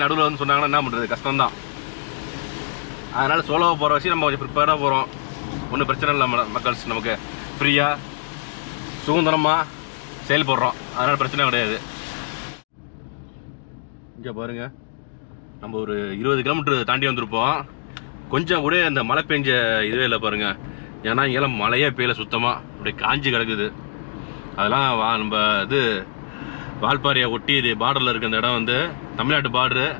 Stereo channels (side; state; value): right; silent; digital silence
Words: நடுவில் வந்து சொன்னாங்கன்னா என்ன பண்ணுறது, கஷ்டம்தான். அதனால் சோலோவாக போகிற வச்சு நம்ம கொஞ்சம் ப்ரிப்பேராக போகிறோம். ஒன்றும் பிரச்சனை இல்லை மக்கள்ஸ், நமக்கு ஃப்ரீயாக சுதந்திரமாக செயல்படுறோம், அதனால் பிரச்சனை கிடையாது. இங்கே பாருங்கள், நம்ம ஒரு 20 கிலோமீட்டர் தாண்டி வந்திருப்போம். கொஞ்சம் கூட இந்த மழை பெஞ்ச இதுவே இல்லை பாருங்கள். ஏன்னா இங்கெல்லாம் மழையே பெய்யல, சுத்தமாக அப்படியே காஞ்சி கிடக்குது. அதெல்லாம் நம்ம இது வால்பாறையை ஒட்டி இது பார்டரில் இருக்க அந்த இடம் வந்து தமிழ்நாட்டு பார்டரு.